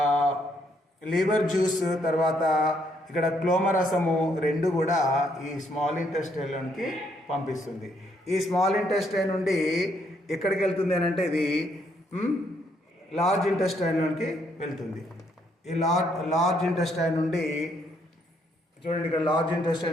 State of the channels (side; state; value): both; normal; correlation 0.72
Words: లివర్ జ్యూస్ తర్వాత ఇక్కడ క్లోమరసము రెండు కూడా ఈ స్మాల్ ఇంటెస్టైన్లోనికి పంపిస్తుంది. ఈ స్మాల్ ఇంటెస్టైన్ నుండి ఎక్కడికి వెళ్తుంది అని అంటే ఇది లార్జ్ ఇంటెస్టైన్లోనికి వెళ్తుంది. ఈ లార్జ్ ఇంటెస్టైన్ నుండి చూడండి, ఇక్కడ లార్జ్